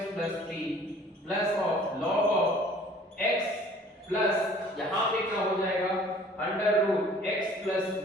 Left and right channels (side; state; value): both; normal; correlation 0.52